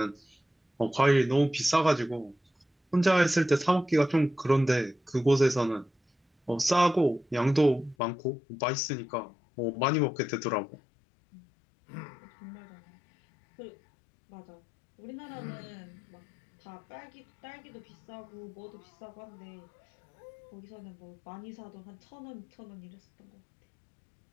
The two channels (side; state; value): right; drops out; at 8.0 s